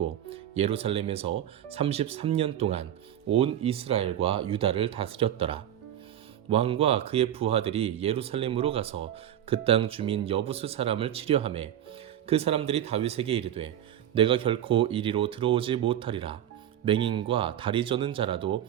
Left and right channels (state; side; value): quieter; left; 11.0 dB